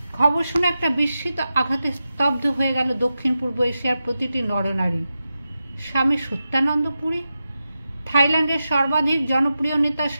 খবর শুনে একটা বিস্মিত আঘাতে স্তব্ধ হয়ে গেল দক্ষিণ পূর্ব এশিয়ার প্রতিটি নরনারী। স্বামী সত্যানন্দ পুরী, থাইল্যান্ডের সর্বাধিক জনপ্রিয় নেতা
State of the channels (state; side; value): inverted; both; correlation -0.91